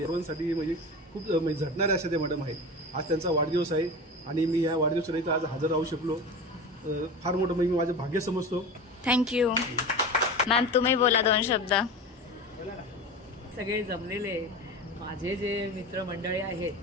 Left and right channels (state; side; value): normal; both; correlation 0.29